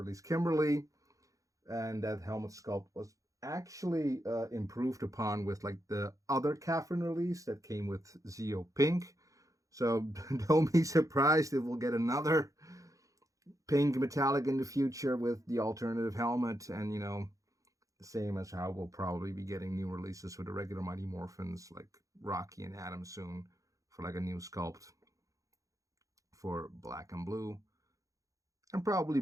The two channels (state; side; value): late; left; 0.16 ms